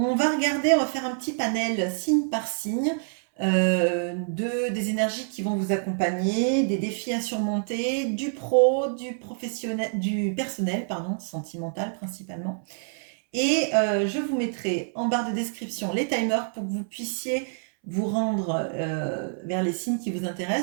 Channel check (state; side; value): silent; left; 60 dB below the other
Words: va faire un petit panel signe par signe des énergies qui vont vous accompagner, des défis à surmonter, du pro, du professionnel, du personnel, pardon, sentimental principalement. Et je vous mettrai en barre de description les timers pour que vous puissiez vous rendre vers les signes qui vous